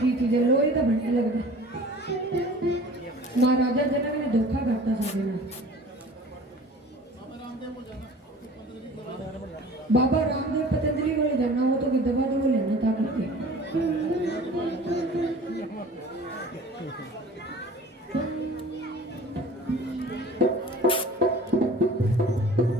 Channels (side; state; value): both; normal; correlation 0.44